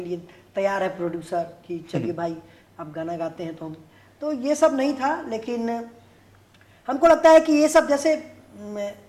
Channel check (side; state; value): both; identical; correlation 1.00